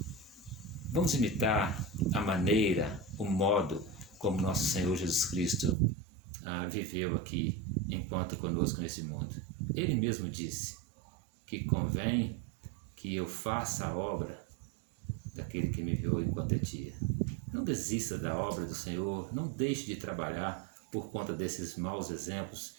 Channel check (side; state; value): left; drops out; at 5.8 s